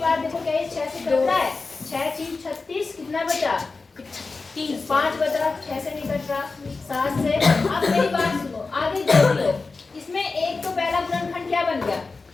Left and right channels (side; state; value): right; quieter; 4.0 dB